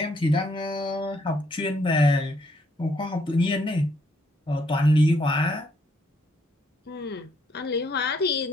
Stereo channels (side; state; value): both; normal; correlation 0.70